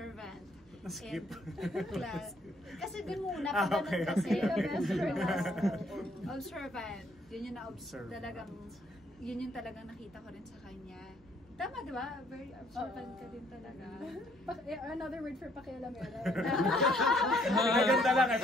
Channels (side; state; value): both; normal; correlation 0.66